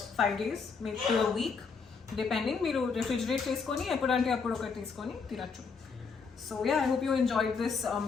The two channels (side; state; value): right; quieter; 5.2 dB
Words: 5 days, maybe to a week, depending. Meeru refrigerate cheskoni epudante appudu okati teeskoni tinachu. So yeah, I hope you enjoyed this